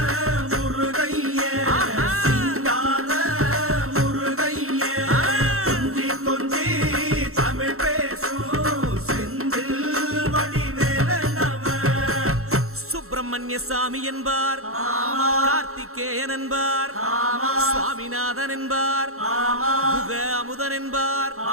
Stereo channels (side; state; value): left; late; 0.63 ms